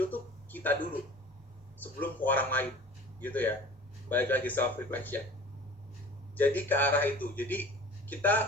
tuh kita dulu sebelum ke orang lain gitu ya. Balik lagi self reflection. Jadi ke arah itu. Jadi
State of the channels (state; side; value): normal; both; correlation 0.42